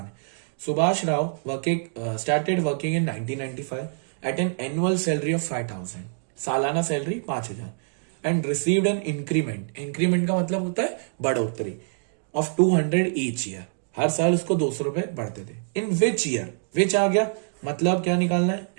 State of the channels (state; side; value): silent; left; digital silence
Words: है। Subhash Rao started working in 1995 at an annual salary of 5000, सालाना salary 5000, and received an increment. Increment का मतलब होता है बढ़ोतरी, ऑफ 200 ईच ईयर। हर साल उसको 200 रुपए बढ़ते थे। इन विच ईयर? विच आ गया, मतलब क्या निकालना है?